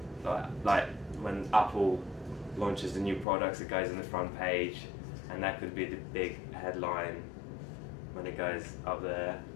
like when Apple launches the new products, it goes on the front page, and that could be the big headline when it goes up there.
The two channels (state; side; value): drops out; right; at 3.2 s